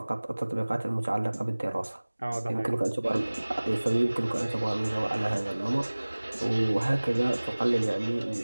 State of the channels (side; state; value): both; inverted; correlation -1.00